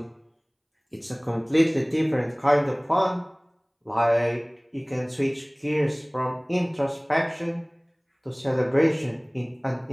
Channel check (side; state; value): both; identical; correlation 1.00